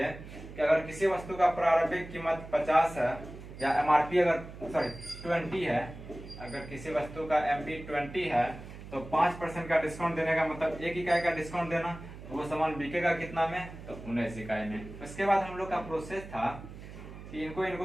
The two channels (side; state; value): right; noise; hum, 14 dB below the sound